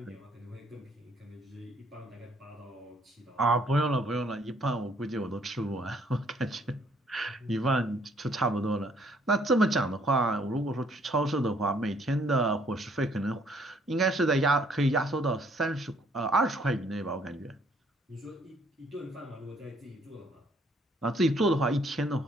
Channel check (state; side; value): normal; both; correlation 0.64